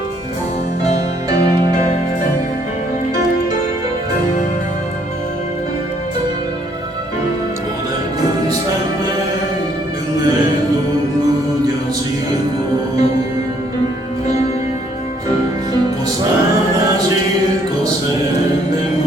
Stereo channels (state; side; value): normal; both; correlation 0.66